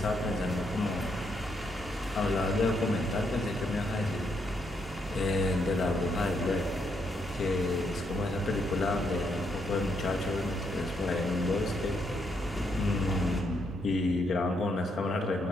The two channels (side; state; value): both; normal; correlation 0.77